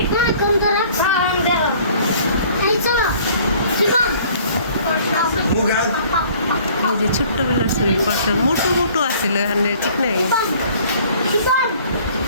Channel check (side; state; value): both; inverted; correlation -0.54